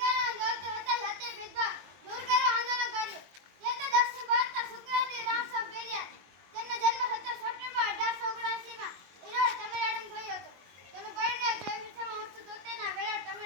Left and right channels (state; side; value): late; left; 22 ms